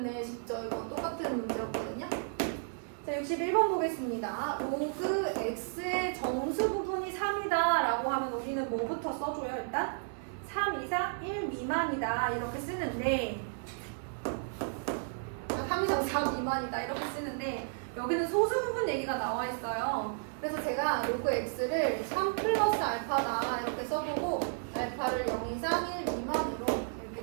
진짜 이거 똑같은 문제였거든요. 자, 61번 보겠습니다. 로그 x의 정수 부분이 3이다 라고 하면 우리는 뭐부터 써줘요? 일단 3 이상 1 미만이다 이렇게 쓰는데 3 이상 4 미만이다 이렇게 쓰는데 여기는 소수 부분 얘기가 나와 있어요. 그래서 제가 로그 x를 3 플러스 알파다 이렇게 써보고 알파를 0 이상 1 미만으로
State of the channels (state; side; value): silent; left; digital silence